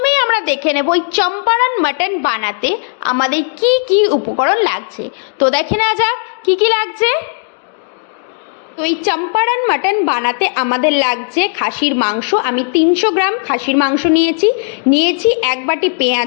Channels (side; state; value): right; silent; digital silence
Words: আমরা দেখে নেব এই চম্পারান মাটন বানাতে আমাদের কি কি উপকরণ লাগছে। তো দেখে নেওয়া যাক কি কি লাগছে। তো এই চম্পারান মাটন বানাতে আমাদের লাগছে খাসির মাংস। আমি 300 গ্রাম খাসির মাংস নিয়েছি 1 বাটি